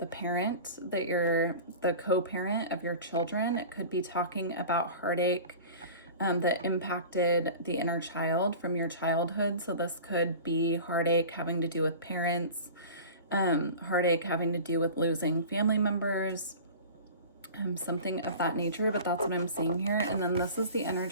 parent that you're the co-parent of your children. It could be talking about heartache that impacted the inner child from your childhood. So this could be heartache having to do with parents, heartache having to do with losing family members, something of that nature, but that's what I'm seeing here. And then this is the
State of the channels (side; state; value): both; inverted; correlation -0.37